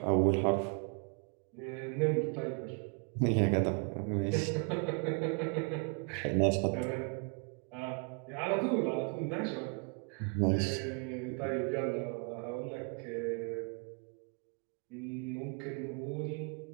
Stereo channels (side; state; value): left; quieter; 36.4 dB